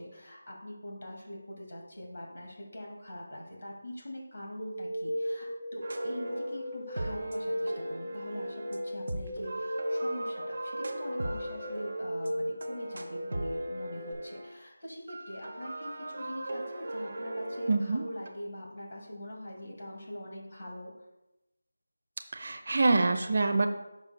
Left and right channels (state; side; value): inverted; both; correlation -0.95